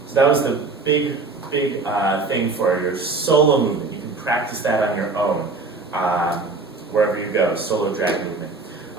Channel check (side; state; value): left; quieter; 3.8 dB